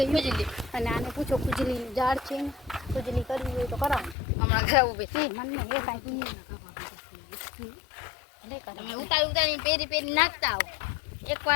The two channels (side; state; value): right; drops out; at 4.2 s